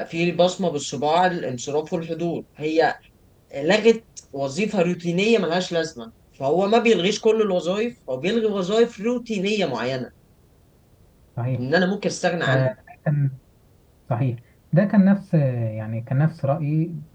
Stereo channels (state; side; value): identical; both; correlation 1.00